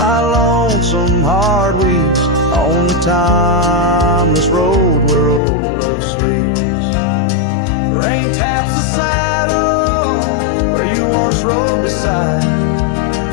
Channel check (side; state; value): right; drops out; at 5.4 s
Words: lonesome heart weeps on the timeless road where old love sleeps. Rain taps the saddle where you once rode beside,